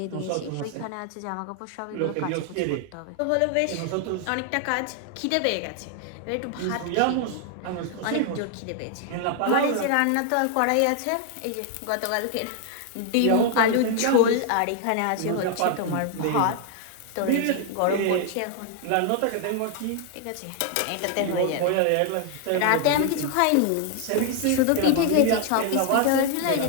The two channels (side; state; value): both; different; correlation 0.00